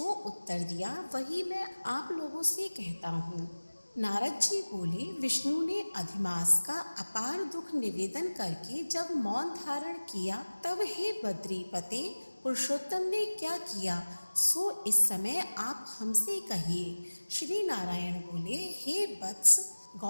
उत्तर दिया वही मैं आप लोगों से कहता हूँ। नारद जी बोले, विष्णु ने अधिमास का अपार दुख निवेदन करके जब मौन धारण किया तब हे बद्रीपते, पुरुषोत्तम ने क्या किया सो इस समय आप हमसे कहिए। श्री नारायण बोले, हे वत्स,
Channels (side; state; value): both; inverted; correlation -1.00